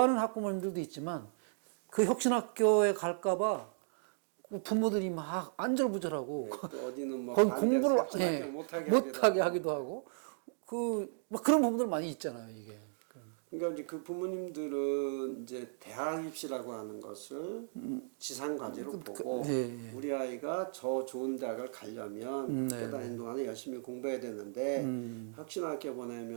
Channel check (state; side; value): silent; left; digital silence